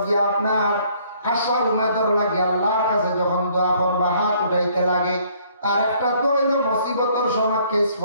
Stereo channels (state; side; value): inverted; both; correlation -0.62